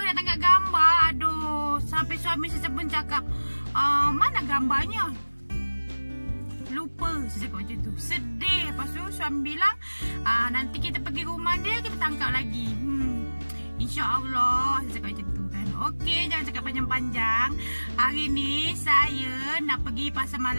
tengok gambar. Aduh, sampai suami saya pun cakap, mana gambarnya? Lupa, saya cakap macam tu. Sedih. Lepas tu suami bilang, nanti kita pergi rumah dia, kita tangkap lagi. InsyaAllah, saya cakap macam tu kan. Okey, jangan cakap panjang-panjang. Hari ni saya nak pergi pasar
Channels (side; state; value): both; inverted; correlation -1.00